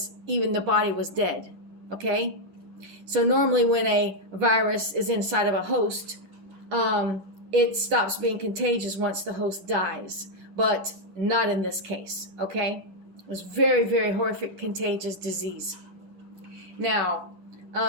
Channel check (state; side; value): late; left; 6.3 ms